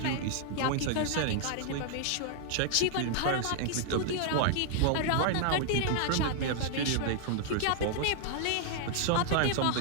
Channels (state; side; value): different; both; correlation -0.01